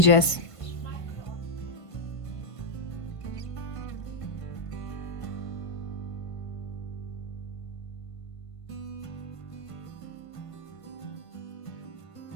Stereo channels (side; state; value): right; late; 1.5 ms